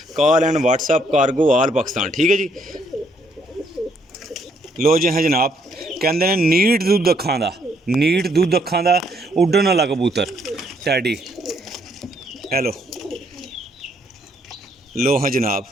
कॉल एंड व्हाट्सअप कार्गो आल पाकिस्तान। ठीक है जी। लो जी हाँ जनाब, कहते हैं नीट दुद्ध अखां दा, नीट दुद्ध अखां दा उड्डन वाला कबूतर टैडी। हेलो, लो हाँ जनाब,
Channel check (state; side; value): normal; both; correlation 0.70